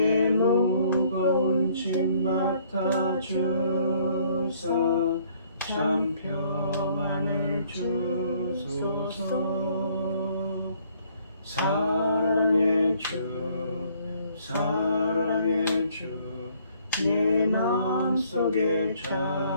무거운 짐 맡아 주사 참 평안을 주소서. 사랑의 주 사랑의 주 내 마음속에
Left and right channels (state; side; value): inverted; both; correlation -0.63